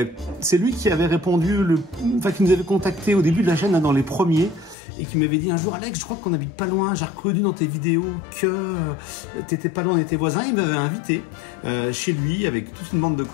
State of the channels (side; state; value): right; drops out; at 4.8 s